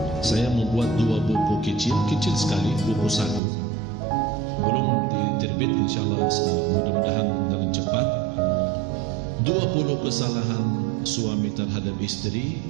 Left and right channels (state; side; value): drops out; left; at 3.4 s